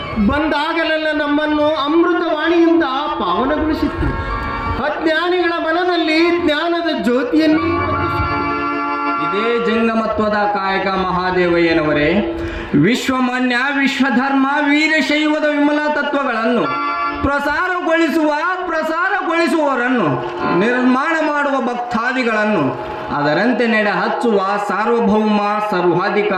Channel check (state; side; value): identical; both; correlation 1.00